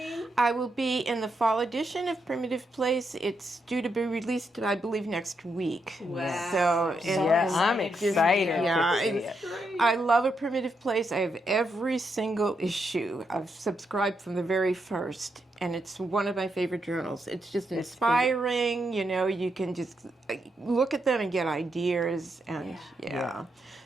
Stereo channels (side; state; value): both; normal; correlation 0.81